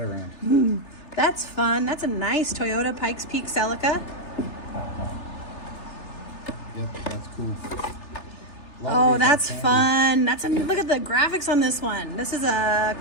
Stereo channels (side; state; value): right; late; 3.3 ms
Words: around? That's fun. That's a nice Toyota Pikes Peak Celica. Yep, that's cool. Oh, that's fun. Look at the graphics on this one. This is a